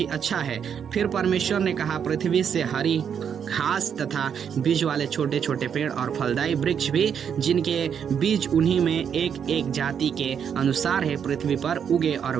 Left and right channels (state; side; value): quieter; left; 7.8 dB